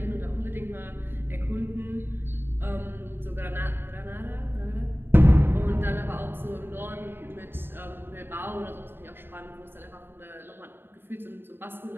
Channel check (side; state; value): left; late; 0.10 ms